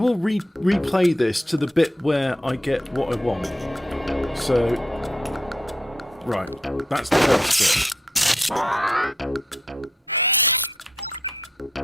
replay this to the bit where I get what I want. So, right, that's the first bit.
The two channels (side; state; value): both; normal; correlation 0.78